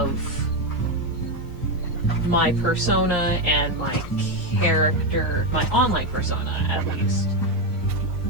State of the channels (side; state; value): both; normal; correlation 0.08